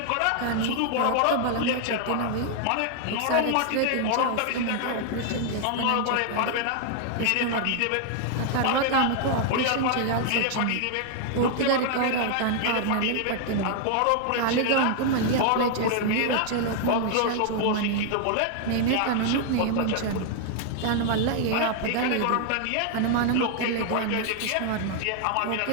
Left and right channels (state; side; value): different; both; correlation 0.00